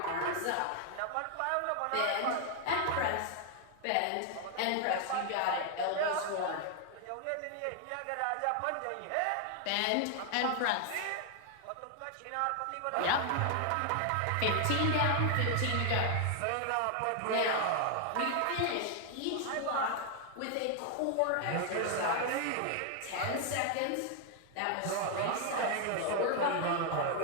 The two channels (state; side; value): different; both; correlation 0.00